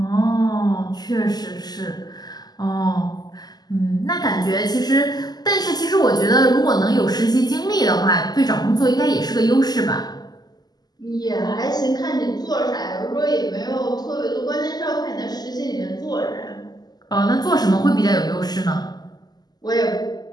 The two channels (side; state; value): right; late; 0.20 ms